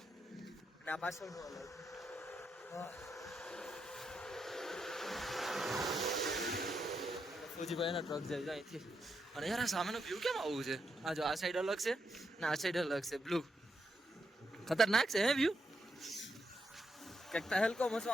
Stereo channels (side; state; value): both; normal; correlation 0.82